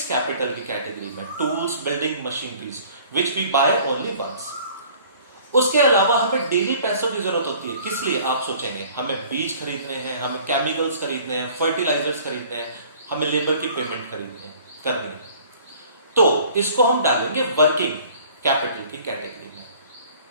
कैपिटल की कैटेगरी में, tools, building, machineries which we buy only once. उसके अलावा हमें डेली पैसों की जरूरत होती है। किस लिए, आप सोचेंगे, हमें बीज खरीदने हैं, हमें केमिकल्स खरीदने हैं, फर्टिलाइजर्स खरीदने हैं, हमें लेबर की पेमेंट करनी है। तो इसको हम डालेंगे वर्किंग कैपिटल की कैटेगरी में।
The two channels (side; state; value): both; inverted; correlation -0.51